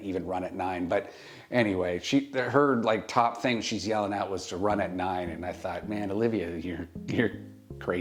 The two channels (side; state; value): both; identical; correlation 1.00